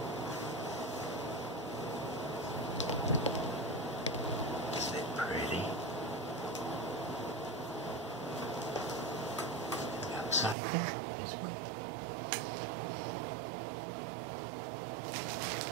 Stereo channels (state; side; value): drops out; left; at 10.6 s